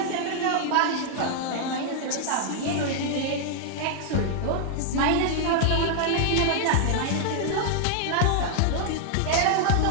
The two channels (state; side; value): different; both; correlation -0.01